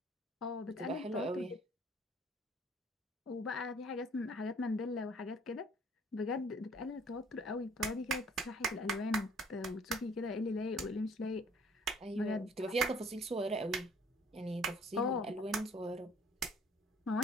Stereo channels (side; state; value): both; normal; correlation 0.56